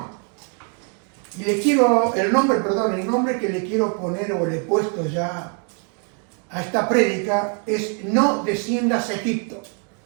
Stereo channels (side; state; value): left; quieter; 39.5 dB